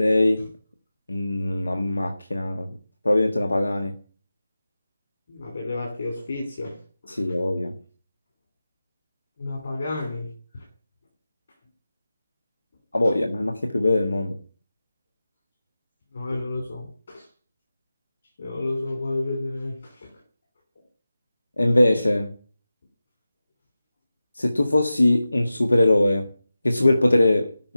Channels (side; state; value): both; inverted; correlation -0.94